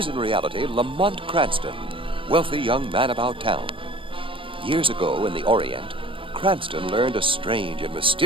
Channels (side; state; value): left; late; 0.25 ms